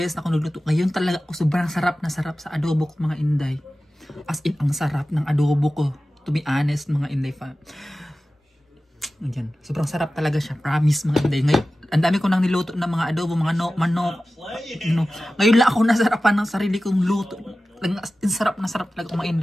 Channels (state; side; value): normal; both; correlation 0.95